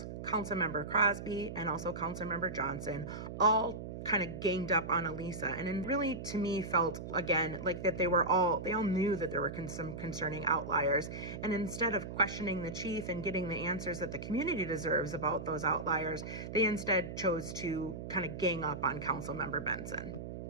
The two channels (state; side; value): noise; right; hum, 8 dB below the sound